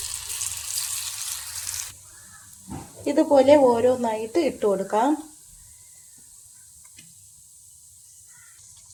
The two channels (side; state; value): both; identical; correlation 1.00